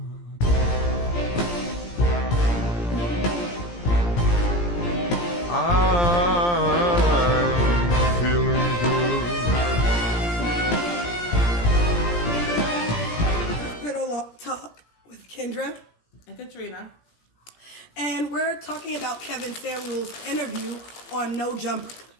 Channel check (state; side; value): late; right; 17 ms